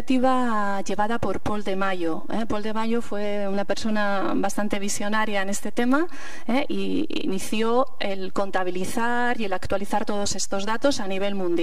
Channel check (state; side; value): identical; both; correlation 1.00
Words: llevada por Pol de Mayo. Pol de Mayo fue una persona bastante visionaria en este tema y inició el contabilizar y el actualizar todos estos datos a nivel